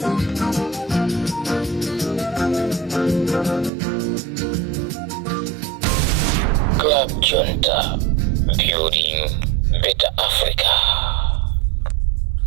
Club Junta, building building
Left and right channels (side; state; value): left; drops out; at 3.7 s